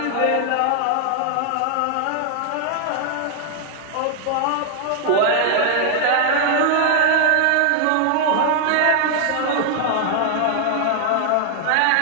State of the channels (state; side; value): different; both; correlation 0.00